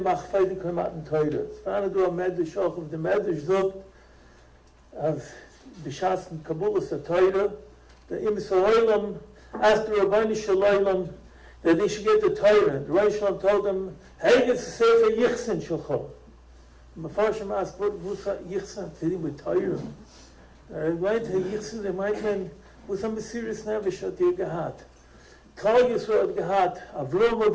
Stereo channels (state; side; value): identical; both; correlation 1.00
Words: für die Klimaten Teure. Es war du am Medisch auch, auf dem Medisch sagt, als beschassen Kabulus der Teure, der im Soleilam, as the Rabbani Shalaylam, that they should get the Torah. The Rabbi Shalom told them, hey, it's a Sefer Yichsen Shulchan. The Mefarshim asked, what's Yichsen? To do with Torah. They went to Yichsen, they might mean, what's a Mesiris Nevish hat ihr gehad? Kol Yisrael hat gehad, Avrom